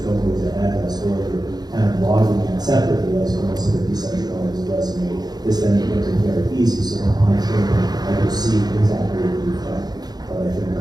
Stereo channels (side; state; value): left; late; 0.19 ms